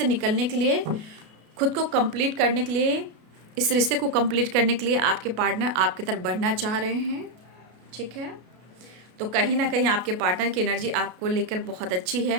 निकलने के लिए, खुद को कंप्लीट करने के लिए, इस रिश्ते को कंप्लीट करने के लिए आपके पार्टनर आपकी तरफ बढ़ना चाह रहे हैं, ठीक है। तो कहीं ना कहीं आपके पार्टनर की एनर्जी आपको लेकर बहुत अच्छी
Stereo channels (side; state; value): left; late; 33 ms